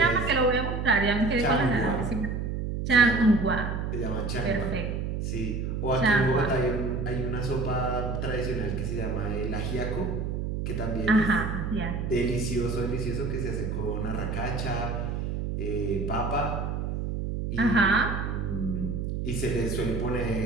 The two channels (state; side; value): noise; right; hum, 2 dB below the sound